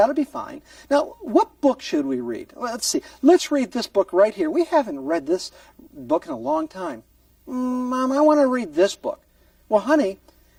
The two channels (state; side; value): identical; both; correlation 1.00